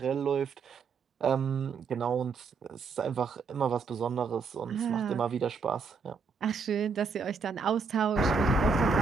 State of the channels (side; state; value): left; quieter; 4.9 dB